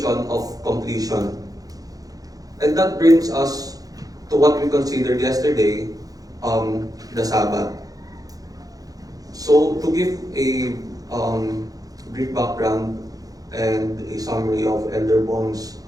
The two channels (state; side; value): late; left; 0.18 ms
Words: of completion. And that brings us to what we considered yesterday, the Sabbath. So, to give a brief background and a summary of Elder Bong's